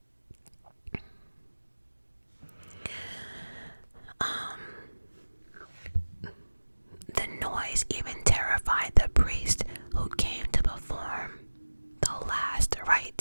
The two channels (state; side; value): inverted; both; correlation -1.00